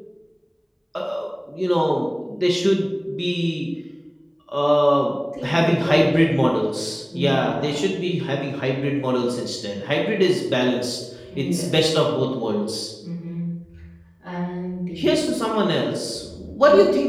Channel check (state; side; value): identical; both; correlation 1.00